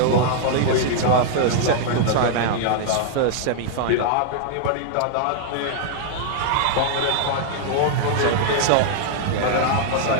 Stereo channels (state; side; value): different; both; correlation -0.01